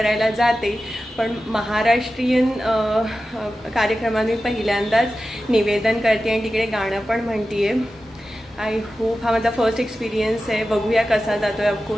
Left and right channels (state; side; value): normal; both; correlation 0.93